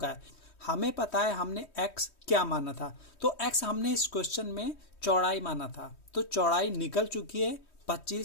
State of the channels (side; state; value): right; late; 3.2 ms